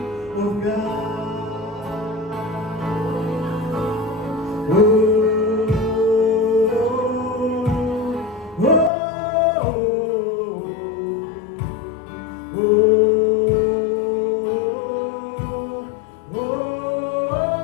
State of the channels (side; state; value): right; drops out; at 8.9 s